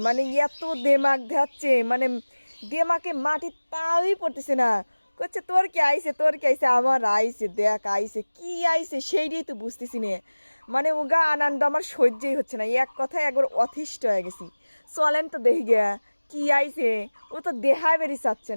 মানে এত দেমাগ ধাচ্ছে, মানে দেমাকে মাটির পাওই পড়তেছে না। করছে তোর কি আইছে, তোর কি আইছে? আমার আইছে, দেখ আইছে, কি আইছে সেইটাই তো বুঝতেছি না। মানে উগা আনন্দ আমার সহ্যই হচ্ছে না, এক কথায় একবার অতিষ্ঠ হয়ে গেছি। চলেন তো দেখি গিয়া কি আইছে। ও তো দেহায় বেরি চাচ্ছে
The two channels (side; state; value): both; inverted; correlation -1.00